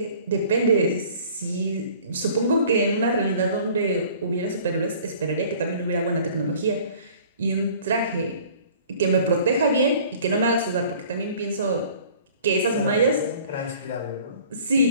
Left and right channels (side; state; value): both; inverted; correlation -0.51